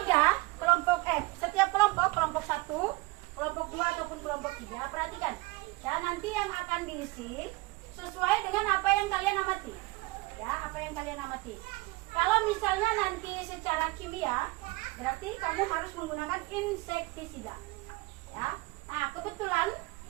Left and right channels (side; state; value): left; quieter; 23.0 dB